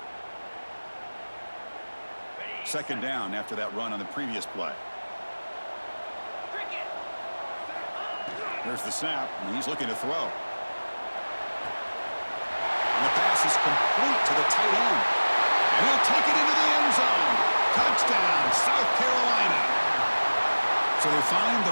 Second down after that run on the previous play. There's the snap, and he's looking to throw. And the pass is complete to the tight end. And he'll take it into the end zone. Touchdown, South Carolina. So they find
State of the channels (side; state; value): both; inverted; correlation -1.00